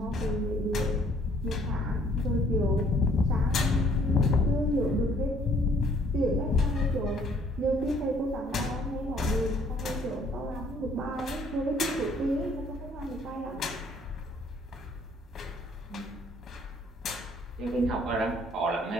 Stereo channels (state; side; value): normal; both; correlation 0.61